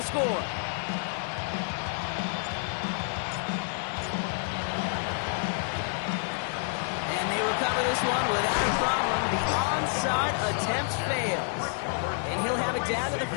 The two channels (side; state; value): right; silent; 57 dB below the other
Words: score. This one without a problem. The onside attempt fails. And he'll have it down to the